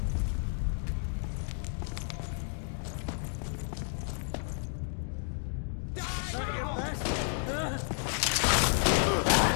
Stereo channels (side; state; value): right; silent; 57 dB below the other